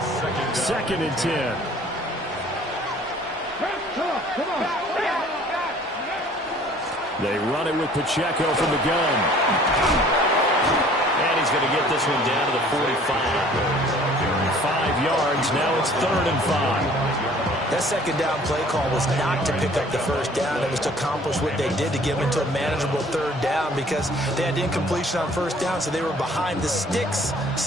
2nd and 10. Come on. They run it with Pacheco from the gun. And he's going to get this one down to the 45. 5 yards. Now it's 3rd and 5. That second down play call was not to pick up the first down. It was to accomplish what they did to get them into a manageable 3rd down because they had incompletion on first down, so they were behind the sticks,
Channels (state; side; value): normal; both; correlation 0.53